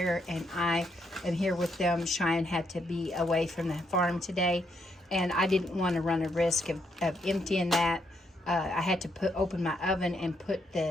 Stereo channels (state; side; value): normal; both; correlation 0.76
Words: and I am here with them. Cheyenne had to be away from the farm today, and I didn't want to run a risk of emptying that. I had to open my oven and put